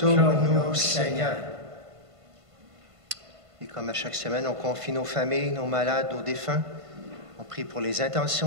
Seigneur. Et comme à chaque semaine, on confie nos familles, nos malades, nos défunts. On prie pour les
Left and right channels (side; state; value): left; late; 1.5 ms